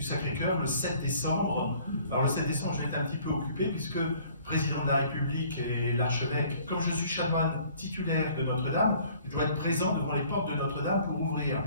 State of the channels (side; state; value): both; inverted; correlation -0.55